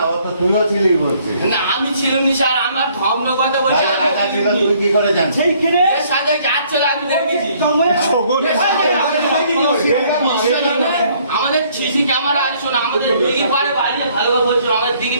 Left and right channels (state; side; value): inverted; both; correlation -0.63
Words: ও তো তুইও ছিলি বলছিস না আমি ছিলাম নি স্যার আমার ধর্ম কথা বলছে রাজা ছিল তুই কি করে জানিস সেইখানে এর সাথে যাচ্ছিল আমি দেখেছি আমাদের সিসি ক্যামেরা আছে শোনো আমাদের দিঘির পাড়ে বাড়ি ভালোভাবে বলছো আমাদের